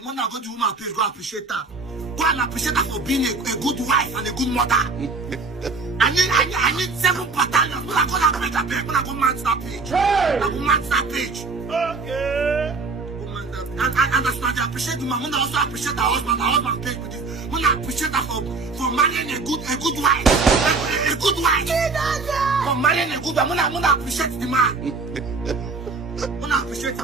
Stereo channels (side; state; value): left; quieter; 4.0 dB